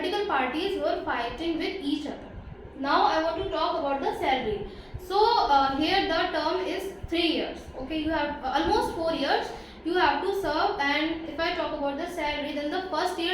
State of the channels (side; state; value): both; identical; correlation 1.00